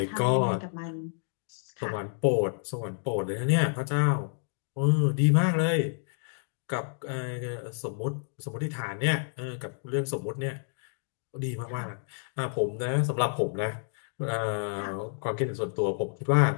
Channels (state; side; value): silent; right; digital silence